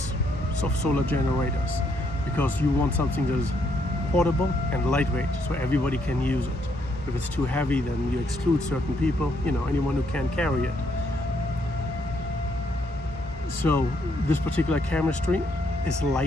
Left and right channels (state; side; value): normal; both; correlation 0.73